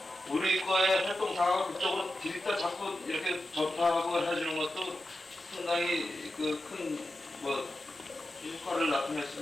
우리 거의 활동 상황을 그쪽으로 디립다 자꾸 이렇게 접하고 해주는 것도 상당히 그 큰 뭐 효과를 나타낼 수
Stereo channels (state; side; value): normal; both; correlation 0.91